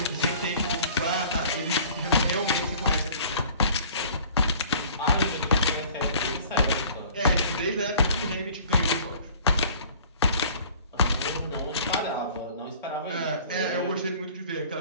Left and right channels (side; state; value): both; inverted; correlation -0.50